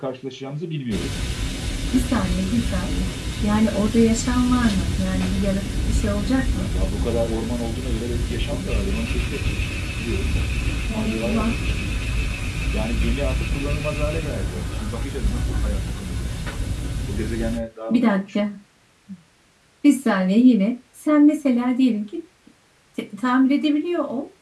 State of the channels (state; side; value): identical; both; correlation 1.00